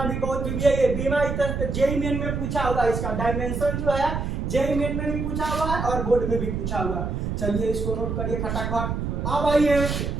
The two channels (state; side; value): noise; right; rumble, 2 dB below the sound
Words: भी बहुत जरूरी है। ये बीमा इधर जेई मेन में पूछा हुआ, इसका डायमेंशन जो है जेई मेन में भी पूछा हुआ है और बोर्ड में भी पूछा हुआ। चलिए इसको नोट करिए फटाफट। अब आइए